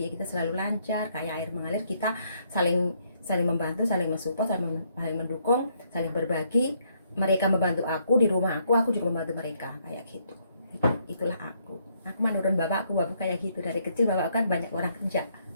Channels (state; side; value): inverted; both; correlation -0.71